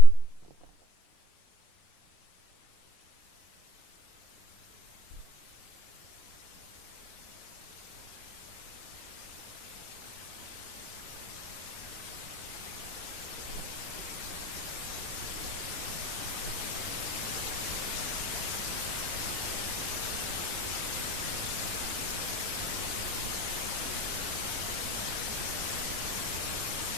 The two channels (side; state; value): right; late; 26 ms